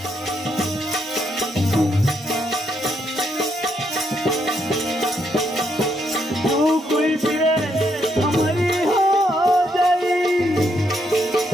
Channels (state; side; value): normal; both; correlation 0.76